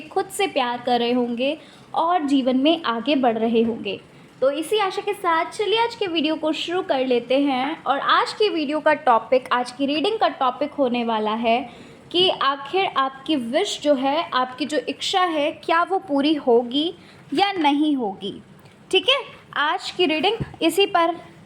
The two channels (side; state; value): both; identical; correlation 1.00